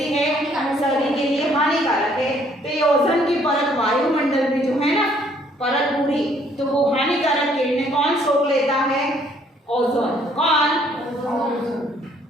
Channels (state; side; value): normal; both; correlation 0.64